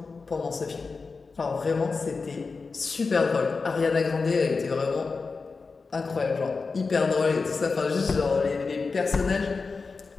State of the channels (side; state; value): right; quieter; 4.4 dB